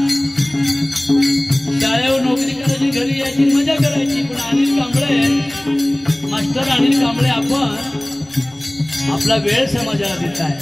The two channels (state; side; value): noise; left; rumble, 29 dB below the sound